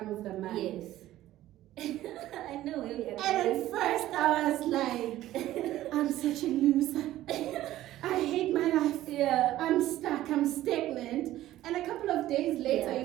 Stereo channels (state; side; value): quieter; left; 14.4 dB